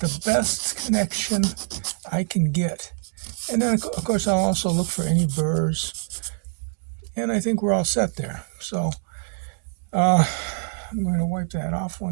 the best connection I can get. And then, of course, I'll also look for any burrs. And I think we're all set there. So I'm going to wipe that off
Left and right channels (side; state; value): left; silent; 62 dB below the other